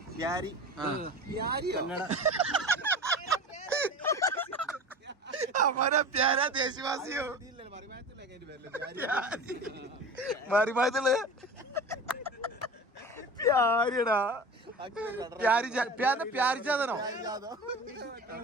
हमारा प्यारा देशवासियों മറിമായത്തുള്ള പ്യാരിടാ. പ്യാരിച്ചാതനോ?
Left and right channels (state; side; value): normal; both; correlation 0.34